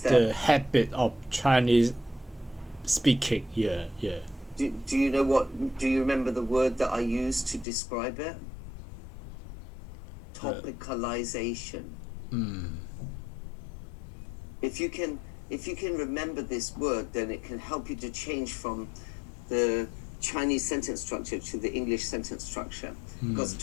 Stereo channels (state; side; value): drops out; right; at 7.7 s